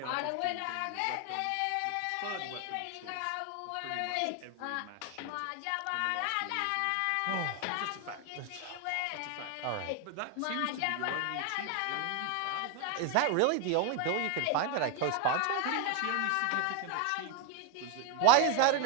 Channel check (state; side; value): different; both; correlation 0.01